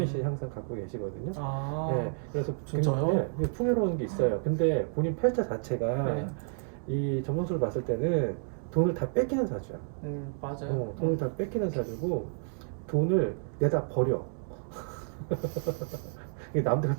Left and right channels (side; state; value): left; silent; digital silence